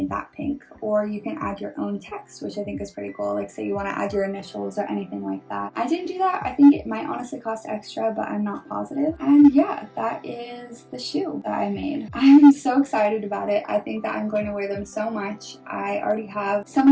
that pink, or you can add your own text, which I think is pretty cool. Like say you want to add your initials or anything like that. I didn't do that. I think it might honestly cost extra, but I'm not positive. And yeah, that is the shoe that I made. I'm so excited about it. I think that I'm going to wear them so much. I already have so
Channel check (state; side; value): identical; both; correlation 1.00